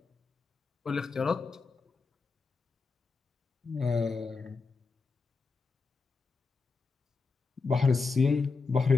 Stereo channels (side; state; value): right; quieter; 4.4 dB